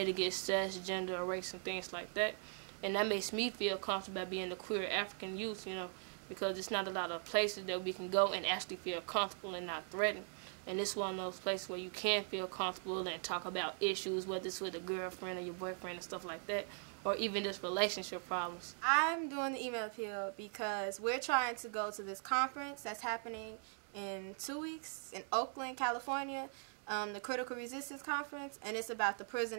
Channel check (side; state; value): left; silent; 51 dB below the other